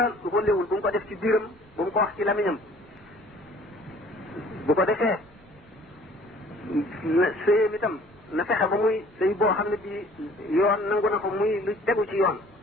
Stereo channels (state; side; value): normal; both; correlation 0.54